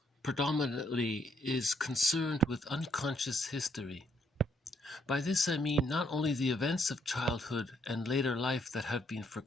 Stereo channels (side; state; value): both; normal; correlation 0.73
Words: predominantly is concerned with unconscious history. By this I mean not only the events of childhood and later life that have been